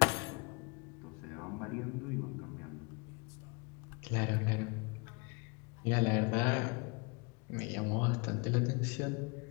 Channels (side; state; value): right; quieter; 30.5 dB